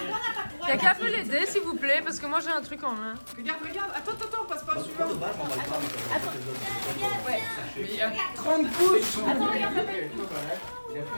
Y'a qu'à peu l'aider s'il vous plaît, parce que moi j'ai un truc en main. Regarde, regarde. Attends, passe pas Moi, celui-là. pour de base, j'emballe pas, mais comme Mais il y a 30 couches. Attends, regarde, papa. Il a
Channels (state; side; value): inverted; both; correlation -1.00